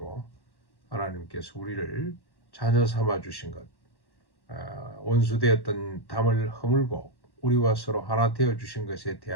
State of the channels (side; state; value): right; late; 1.1 ms